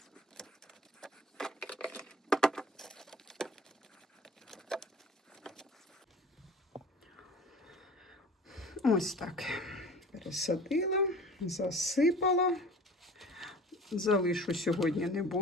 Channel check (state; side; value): normal; both; correlation 0.43